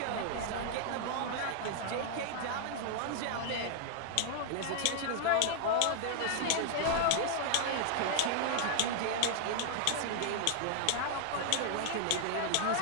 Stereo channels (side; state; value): both; different; correlation 0.00